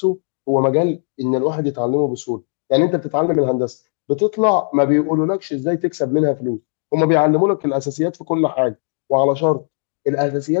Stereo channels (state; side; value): silent; right; digital silence